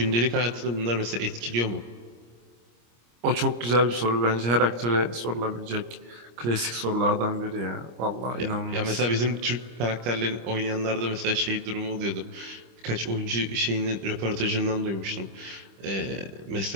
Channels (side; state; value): left; late; 25 ms